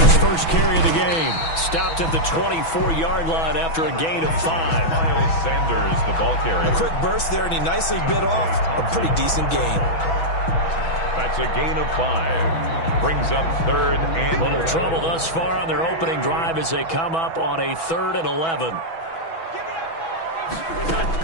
first carry of the game. Stopped at the 24-yard line after a gain of 5. Miles Sanders, the ball carrier. A quick burst there, and he nicely bit off a pretty decent gain. That's a gain of 5. Brings up 3rd and... Little trouble thus far on their opening drive as they come up on a 3rd and 11.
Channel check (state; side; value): late; right; 6.1 ms